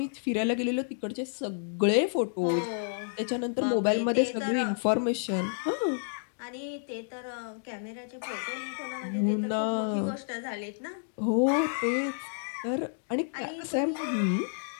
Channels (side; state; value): right; silent; digital silence